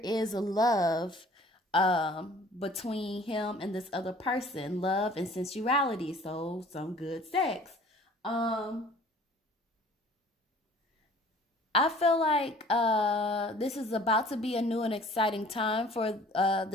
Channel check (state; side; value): normal; both; correlation 0.51